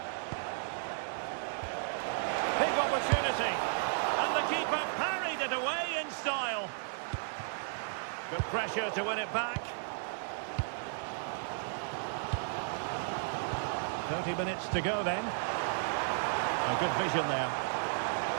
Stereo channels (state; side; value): silent; left; digital silence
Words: Big opportunity. And the keeper parried it away in style. Good pressure to win it back. 30 minutes to go then. A good vision there.